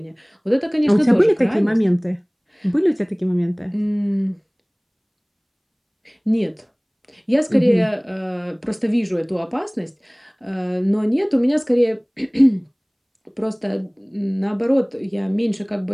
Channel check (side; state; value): both; identical; correlation 1.00